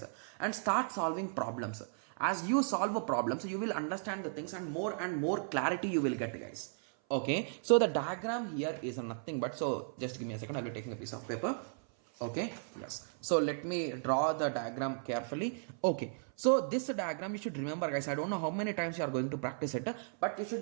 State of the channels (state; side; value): silent; left; 54 dB below the other